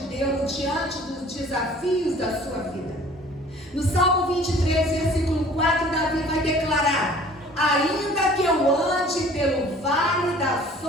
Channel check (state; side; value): normal; both; correlation 0.50